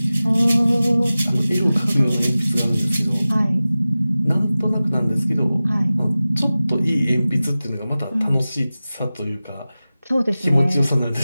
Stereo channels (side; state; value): both; inverted; correlation -0.96